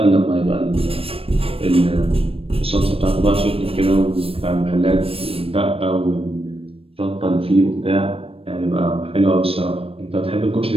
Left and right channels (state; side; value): late; left; 0.28 ms